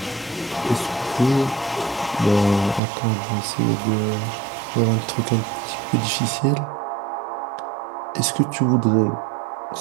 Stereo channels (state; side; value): drops out; left; at 2.8 s